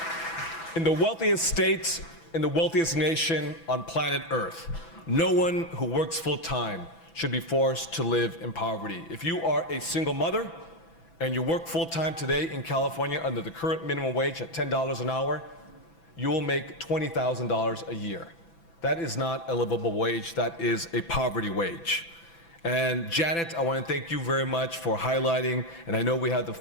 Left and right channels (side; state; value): right; late; 6.0 ms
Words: In the wealthiest state, in the wealthiest nation on planet Earth, no one who works full-time should be forced to live in poverty. If you are a single mother and you work full-time today in California under the current minimum wage at $10 an hour, you will make $20,000 a year. That is not a livable wage, that is a poverty wage. And Janet, I want to thank you very much for highlighting, and I know we have